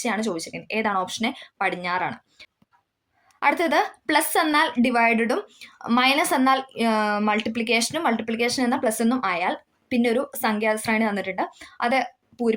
ചോദിച്ചിരിക്കുന്നത്. ഏതാണ്? ഓപ്ഷൻ എ പടിഞ്ഞാറാണ്. അടുത്തത്, പ്ലസ് എന്നാൽ ഡിവൈഡഡും മൈനസ് എന്നാൽ മൾട്ടിപ്ലിക്കേഷനും മൾട്ടിപ്ലിക്കേഷൻ എന്നാൽ പ്ലസ് എന്നും ആയാൽ പിന്നെ ഒരു സംഖ്യാശ്രേണി തന്നിട്ടുണ്ട്, അത്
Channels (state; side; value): identical; both; correlation 1.00